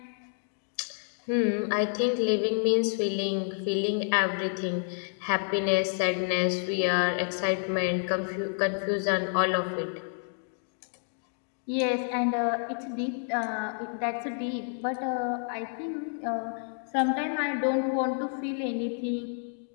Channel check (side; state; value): right; silent; 58 dB below the other